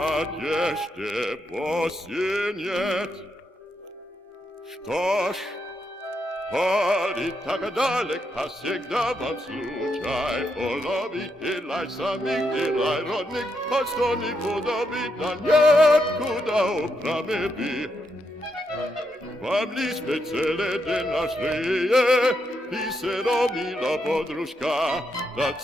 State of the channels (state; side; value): normal; both; correlation 0.81